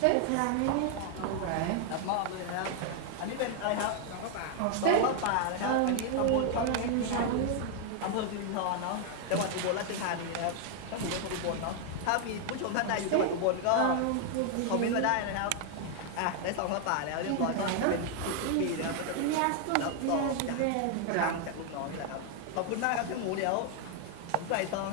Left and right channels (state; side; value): different; both; correlation 0.00